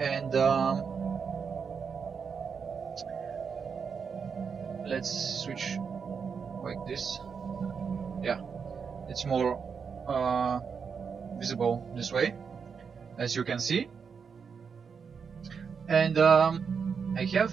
Let's switch like this. Yeah, it's more visible this way, as you can see. And I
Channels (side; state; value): left; quieter; 6.1 dB